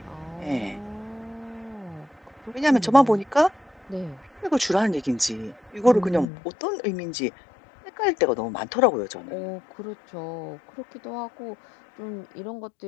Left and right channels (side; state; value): right; drops out; at 6.3 s